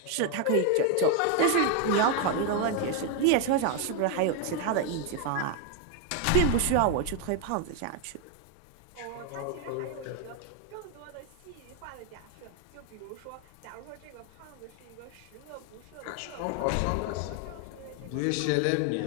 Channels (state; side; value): different; both; correlation 0.01